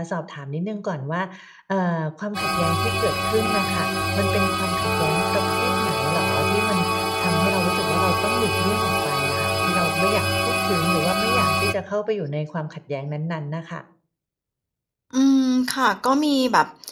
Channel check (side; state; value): both; identical; correlation 1.00